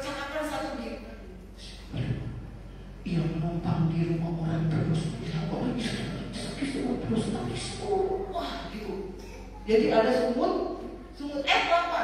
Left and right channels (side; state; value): both; identical; correlation 1.00